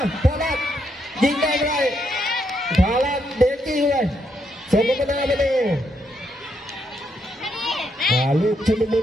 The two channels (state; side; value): normal; both; correlation 0.77